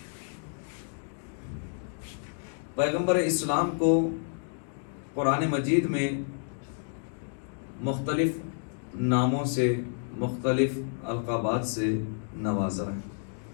پیغمبر اسلام کو قرآن مجید میں مختلف ناموں سے، مختلف القابات سے نوازا ہے.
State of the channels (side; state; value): right; silent; digital silence